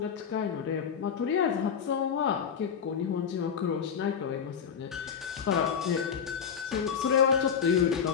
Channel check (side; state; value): right; quieter; 7.2 dB